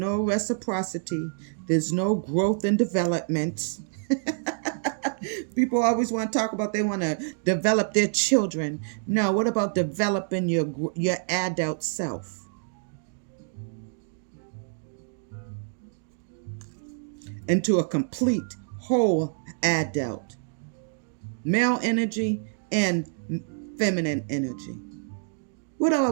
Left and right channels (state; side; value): silent; left; digital silence